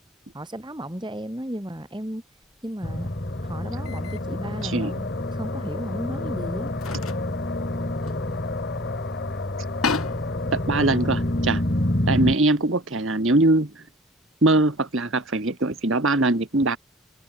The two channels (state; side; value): normal; both; correlation 0.46